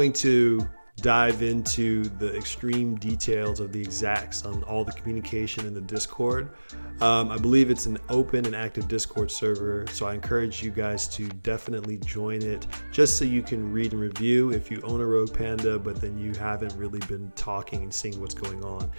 to dive into the extreme details of the exacts on all the communication in the Discord. I believe it's an open and active Discord server, so I encourage you guys to definitely join it just so you can read and review if you own a Rogue Panda, but then you haven't really been talking and seeing what's going on.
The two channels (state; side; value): inverted; both; correlation -1.00